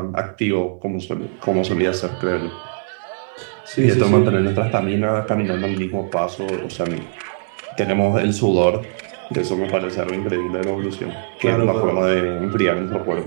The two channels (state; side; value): silent; left; 64 dB below the other